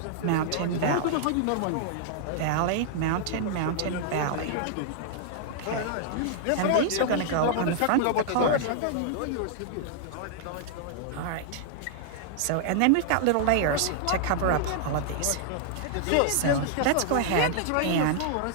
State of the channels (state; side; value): different; both; correlation -0.01